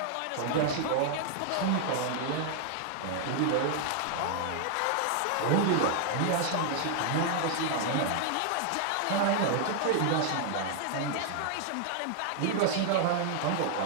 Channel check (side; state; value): both; different; correlation 0.00